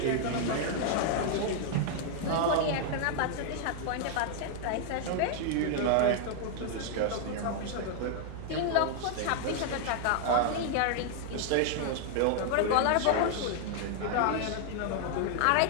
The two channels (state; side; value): different; both; correlation 0.00